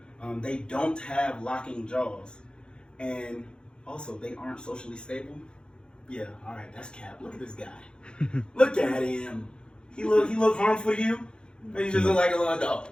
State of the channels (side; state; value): right; late; 0.050 ms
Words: they don't have locking jaws, and also they aren't socially stable. Yeah, all right, that's cap. Look at this guy. Look at him. He look harmful to you? Or you just look like a little dog?